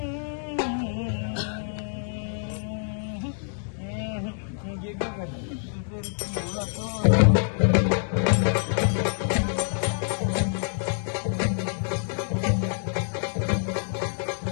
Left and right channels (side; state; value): right; silent; digital silence